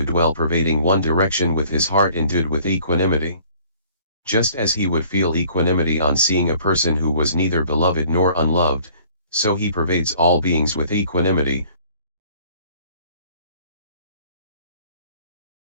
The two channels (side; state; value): both; inverted; correlation -0.55